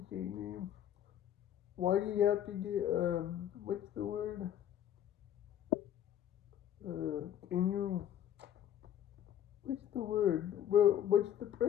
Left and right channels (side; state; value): right; quieter; 10.5 dB